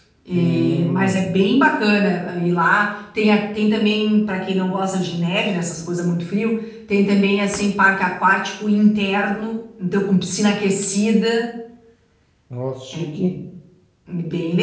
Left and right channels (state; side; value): identical; both; correlation 1.00